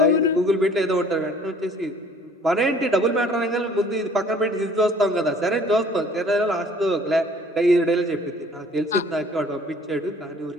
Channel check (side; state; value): both; normal; correlation 0.54